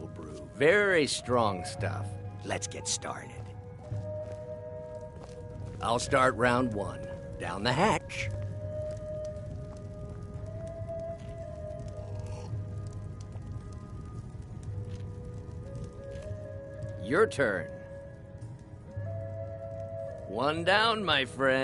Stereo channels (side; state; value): both; identical; correlation 1.00